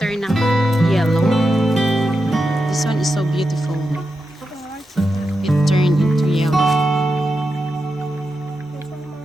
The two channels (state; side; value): normal; both; correlation 0.88